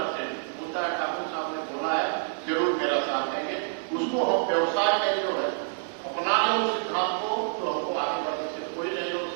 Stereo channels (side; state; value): left; silent; digital silence